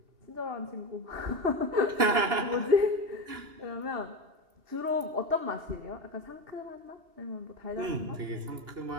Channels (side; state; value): left; late; 2.9 ms